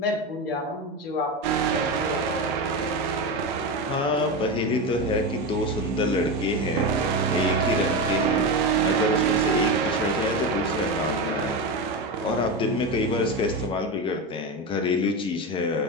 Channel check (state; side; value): normal; both; correlation 0.18